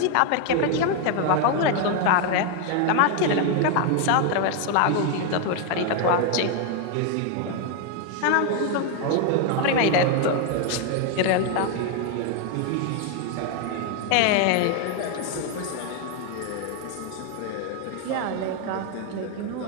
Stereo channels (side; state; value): both; different; correlation 0.01